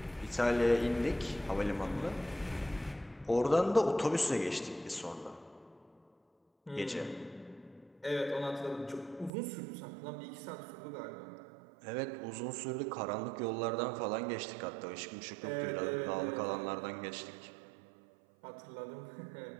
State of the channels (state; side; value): drops out; left; at 9.3 s